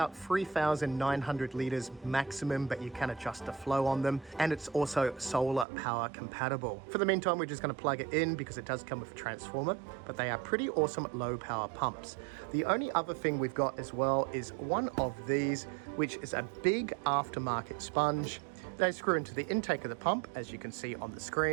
3,900 litres maximum, but you can adjust the flow on them, and it's also solar power compatible. For the meantime, we're just going to plug it in because it does come with a transformer, but they are pretty awesome low power pumps. The only other thing we've got as well is one of these, which is a big aftermarket sponge. They screw into the intake of the pump, as you can see on the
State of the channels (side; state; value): left; drops out; at 5.7 s